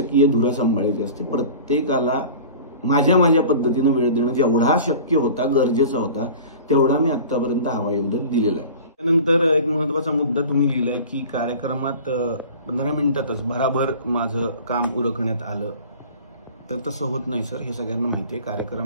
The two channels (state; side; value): inverted; both; correlation -0.40